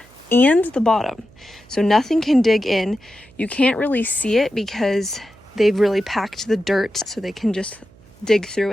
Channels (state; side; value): noise; right; hum, 27 dB below the sound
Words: and the bottom, so nothing can dig in. You can't really see it because they've really packed the dirt so they can just dig through